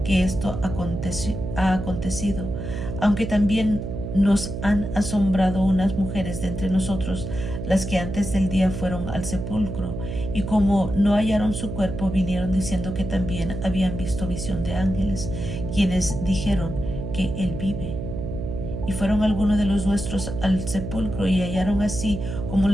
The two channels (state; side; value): noise; right; hum, 6 dB below the sound